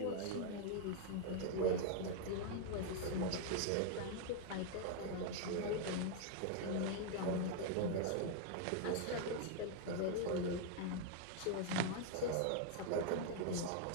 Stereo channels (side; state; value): both; different; correlation 0.00